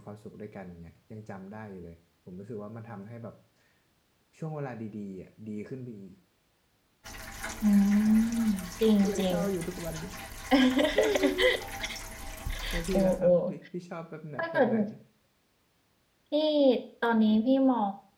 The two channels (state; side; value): identical; both; correlation 1.00